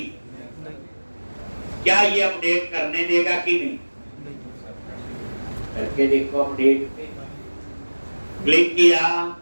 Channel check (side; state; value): both; inverted; correlation -1.00